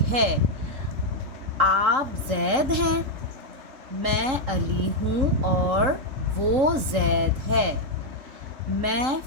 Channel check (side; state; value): left; late; 3.7 ms